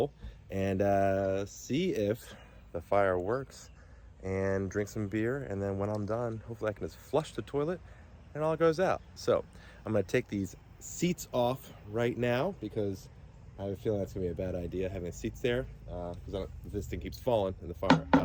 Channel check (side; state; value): both; identical; correlation 1.00